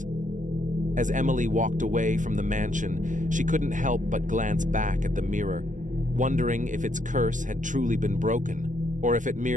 As Emily walked away from the mansion, she couldn't help but glance back at the mirror, wondering if its curse had truly been broken, or if it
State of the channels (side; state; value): left; late; 0.37 ms